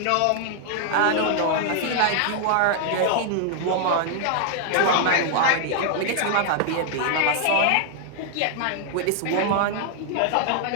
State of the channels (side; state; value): both; different; correlation 0.00